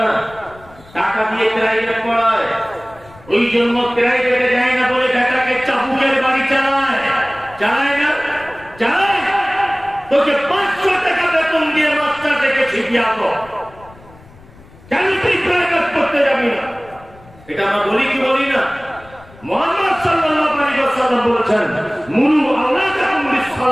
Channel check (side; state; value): left; noise; rumble, 24 dB below the sound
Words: না, টাকা দিয়ে প্রাইভেট পড়ায়, ওই জন্য প্রাইভেটে যায় না বলে বেটাকে চাবুকের বাড়ি চালায়। চালায় না? চালায়। তোকে 500 টাকা বেতন দিয়ে মাস্টার থেকে শিখিয়ে আনো, কেন তুই প্রাইভেট করতে যাবি না? এটা আমরা বলি কি বলি না? মুহাম্মদ সাল্লাল্লাহু আলাইহি ওয়াসাল্লাম বলেছেন, মুরু আওলাদাকুম